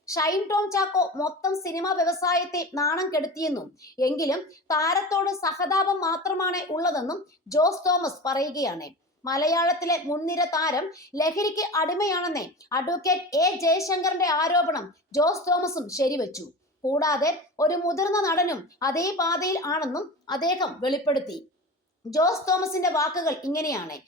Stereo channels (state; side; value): normal; both; correlation 0.31